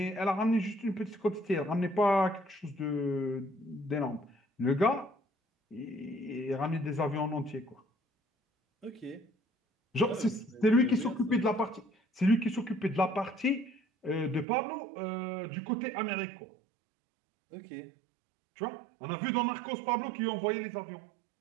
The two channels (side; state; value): left; drops out; at 14.5 s